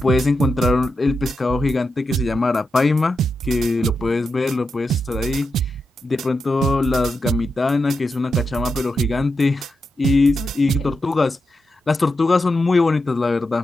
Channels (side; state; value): both; normal; correlation 0.87